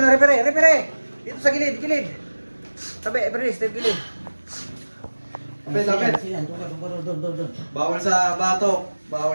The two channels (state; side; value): inverted; both; correlation -1.00